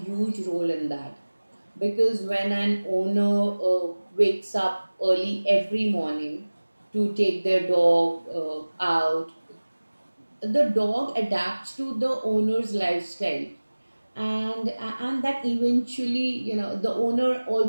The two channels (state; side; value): inverted; both; correlation -1.00